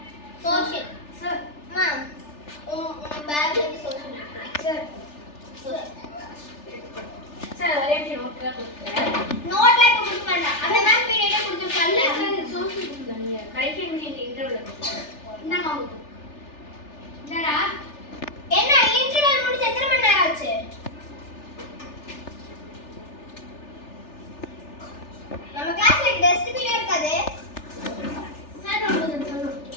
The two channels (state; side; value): late; right; 3.4 ms